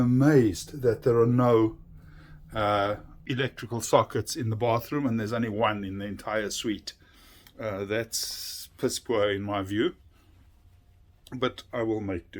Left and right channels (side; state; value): both; identical; correlation 1.00